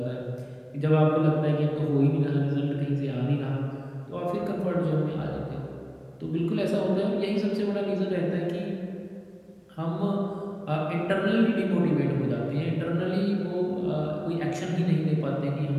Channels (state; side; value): identical; both; correlation 1.00